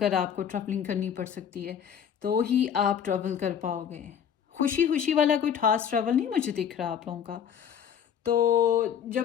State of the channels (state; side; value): quieter; right; 8.4 dB